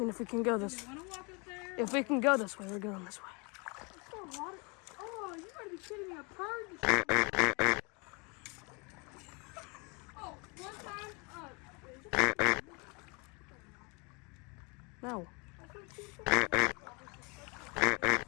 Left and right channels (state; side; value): quieter; right; 30.9 dB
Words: if we can go this, You want to walk up there? if we can go this way, we're going this way. It's so water. Oh, you gotta be kidding me. A bird. Oh, one time, No.